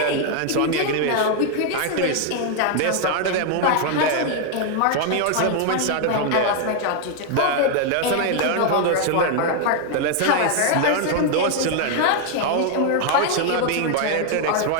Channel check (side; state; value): both; different; correlation 0.00